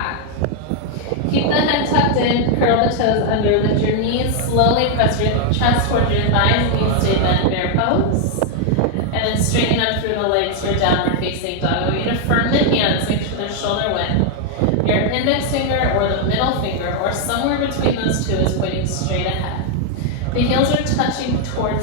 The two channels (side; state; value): both; different; correlation 0.00